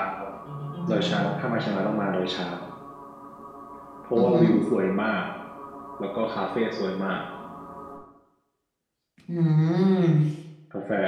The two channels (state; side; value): identical; both; correlation 1.00